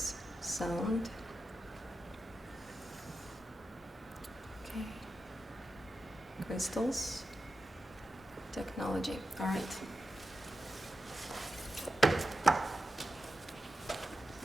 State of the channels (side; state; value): both; normal; correlation 0.90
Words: Sound. Okay. Crystals. Technology. All right.